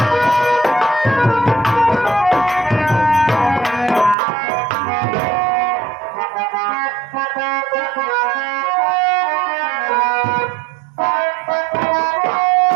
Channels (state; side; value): drops out; left; at 4.2 s